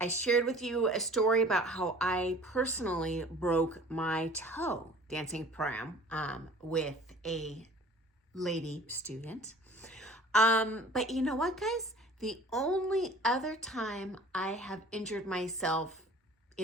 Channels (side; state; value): both; normal; correlation 0.47